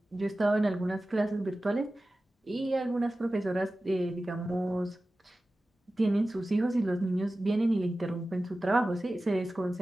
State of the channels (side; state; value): both; normal; correlation 0.95